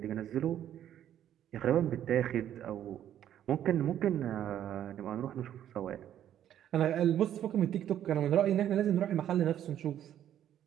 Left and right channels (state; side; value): quieter; left; 10.9 dB